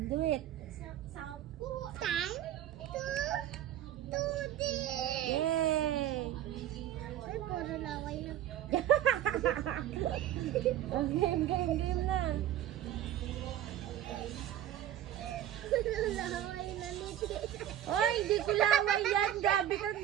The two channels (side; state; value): left; quieter; 11.8 dB